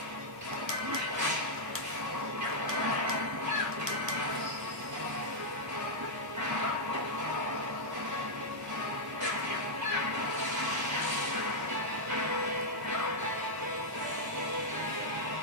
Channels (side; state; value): both; normal; correlation -0.04